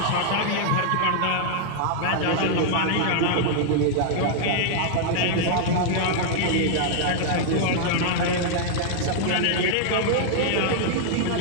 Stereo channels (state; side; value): different; both; correlation -0.01